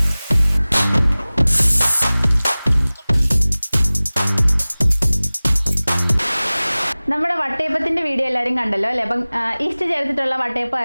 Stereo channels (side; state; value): both; inverted; correlation -0.99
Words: നമ്മുടെ വട്ടയപ്പത്തിന്റെ വീഡിയോ എല്ലാവരും കണ്ടല്ലോ അല്ലേ? അപ്പം ഈസ്റ്റ് ചേർത്തിട്ടുള്ള